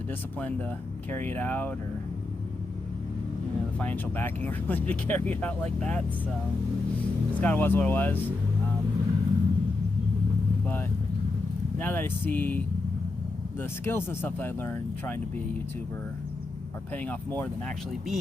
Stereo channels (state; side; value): quieter; right; 3.3 dB